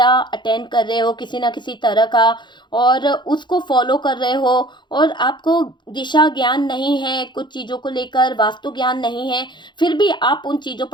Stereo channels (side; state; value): right; late; 0.22 ms